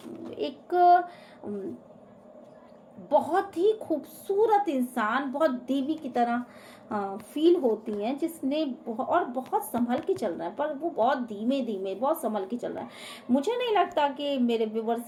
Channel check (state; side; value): identical; both; correlation 1.00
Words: एक बहुत ही खूबसूरत इंसान, बहुत देवी की तरह फील होती हैं, जिसने और बहुत संभल के चल रहा है, पर वो बहुत धीमे धीमे बहुत संभल के चल रहा है। मुझे नहीं लगता कि मेरे